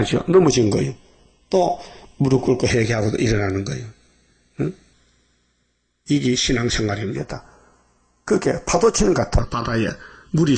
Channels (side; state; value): both; identical; correlation 1.00